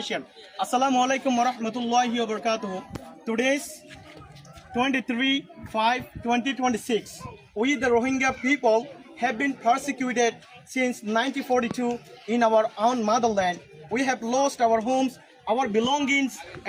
Assalamu alaikum wa rahmatullahi wa barakatuh. Today's 23/5/2026. We, the Rohingya people, have been persecuted since 1942 in our own motherland. We have lost our homes, our belongings,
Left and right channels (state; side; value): identical; both; correlation 1.00